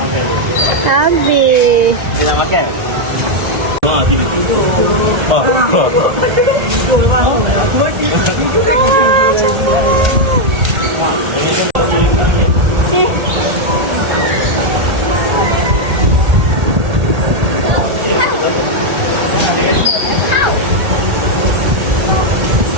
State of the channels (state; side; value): late; left; 1.8 ms